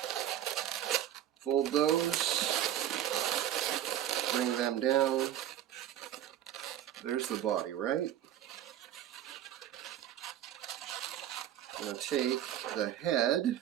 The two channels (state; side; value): quieter; left; 11.6 dB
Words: Fold those, bring them down. There's the body, right? I'm going to take the head,